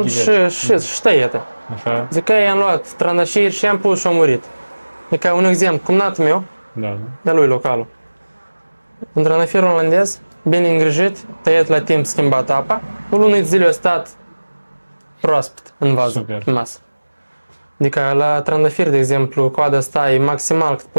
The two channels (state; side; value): inverted; both; correlation -1.00